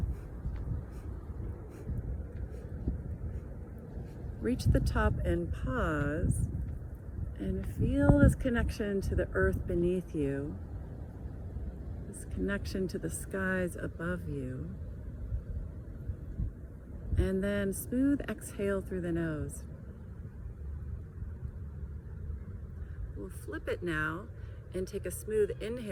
Reach the top and pause. And feel this connection to the earth beneath you, this connection to the skies above you. And then smooth exhale through the nose. We'll flip it now and take a smooth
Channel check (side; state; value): both; identical; correlation 1.00